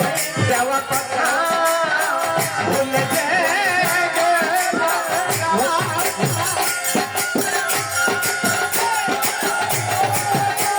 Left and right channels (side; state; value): both; identical; correlation 1.00